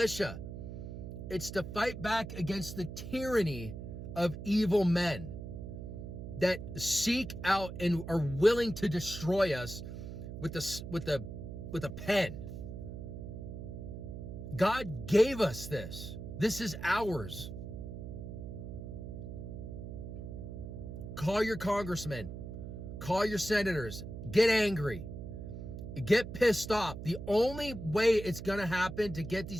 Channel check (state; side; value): noise; right; hum, 8 dB below the sound